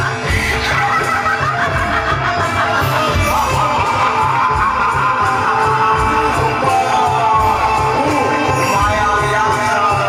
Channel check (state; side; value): identical; both; correlation 1.00